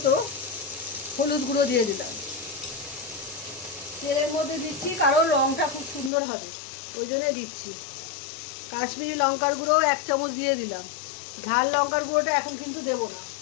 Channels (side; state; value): right; drops out; at 6.1 s